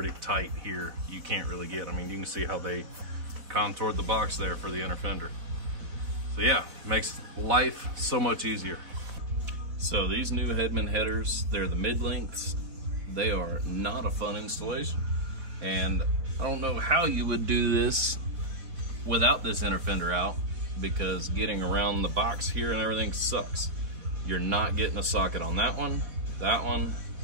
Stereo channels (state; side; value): late; left; 4.1 ms